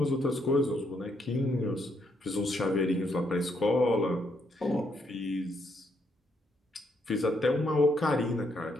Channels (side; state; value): both; normal; correlation 0.75